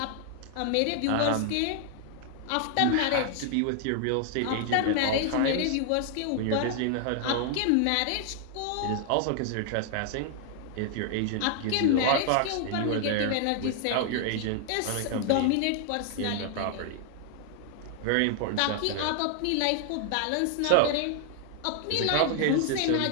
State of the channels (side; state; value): both; different; correlation 0.00